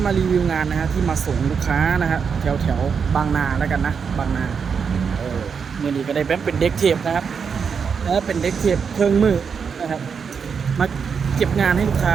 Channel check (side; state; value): left; quieter; 6.2 dB